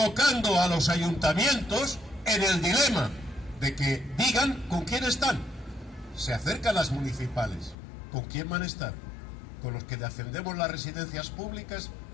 a los ayuntamientos en el dilema de que digan con quién están. Se acercan las municipales, ¿con quién van a estar? ¿Con los que defendemos las residencias públicas,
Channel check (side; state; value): right; drops out; at 7.8 s